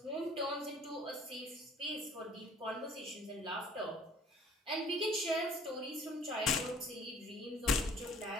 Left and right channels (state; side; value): normal; both; correlation 0.54